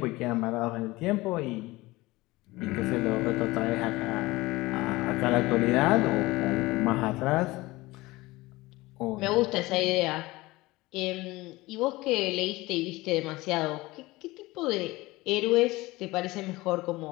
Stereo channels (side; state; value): right; quieter; 20.4 dB